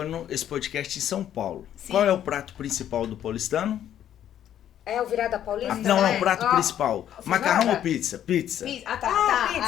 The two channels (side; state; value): right; quieter; 10.7 dB